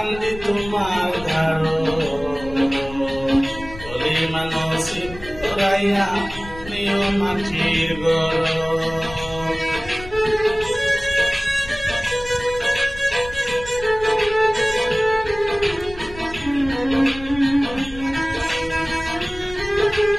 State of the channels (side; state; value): left; noise; rumble, 16 dB below the sound